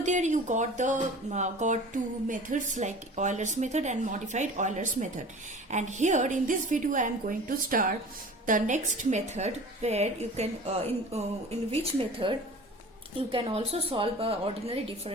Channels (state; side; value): normal; both; correlation 0.41